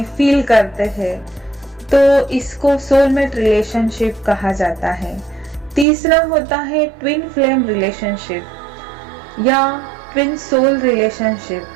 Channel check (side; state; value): left; drops out; at 5.9 s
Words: फील करते हैं, तो इसको सोलमेट रिलेशनशिप कहा जाता है। तीसरा होता है ट्विन फ्लेम रिलेशनशिप या ट्विन सोल रिलेशनशिप।